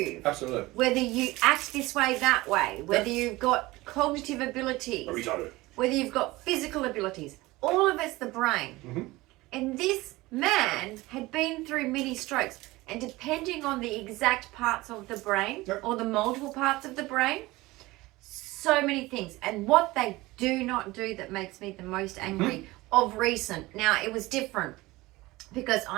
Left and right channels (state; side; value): quieter; left; 20.1 dB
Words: absolutely, whether you act this way, that way, whether you've got cognitive abilities, whether you've got physical abilities, all of it's the brain. And this man had been through many strokes, and depending on the exact parts of the brain or the multiple parts of the brain, so many things. And what they do not do that makes me the most angry of recent. Now, it was different because